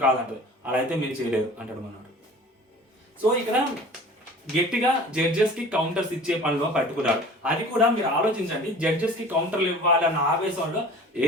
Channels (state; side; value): normal; both; correlation 0.43